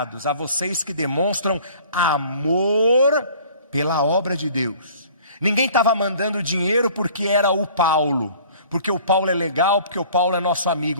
a vocês que demonstram amor pela obra de Deus. Ninguém estava mandando dinheiro porque era o Paulo, porque o Paulo é legal, porque o Paulo é nosso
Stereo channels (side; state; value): both; inverted; correlation -0.50